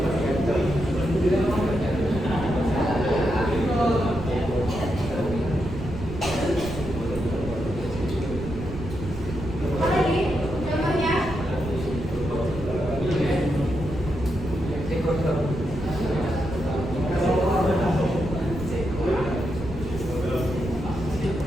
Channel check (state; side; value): noise; right; rumble, 9 dB below the sound